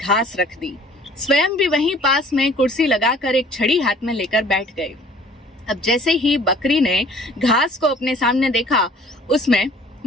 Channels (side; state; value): both; normal; correlation 0.52